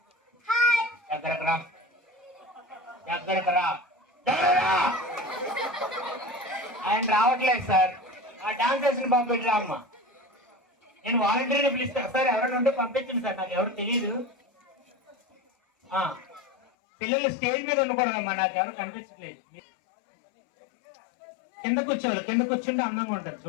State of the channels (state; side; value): drops out; right; at 16.6 s